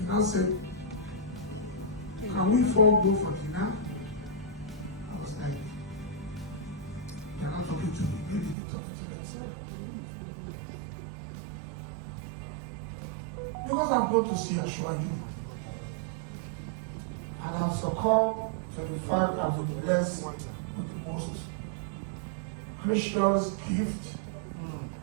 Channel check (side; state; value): left; drops out; at 8.6 s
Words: now said, can we four go for dinner? I was like, they're not talking to me, maybe they're talking to themselves. Because I'm going to see assure you. And I've succumbed to the fact I've been blessed with the most gracious gift.